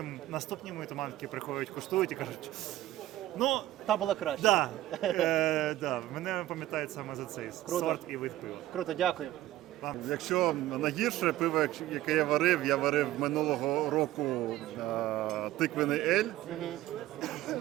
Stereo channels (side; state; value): left; quieter; 15.0 dB